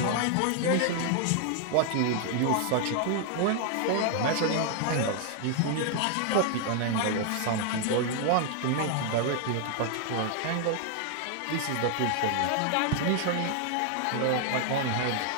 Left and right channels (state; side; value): different; both; correlation 0.00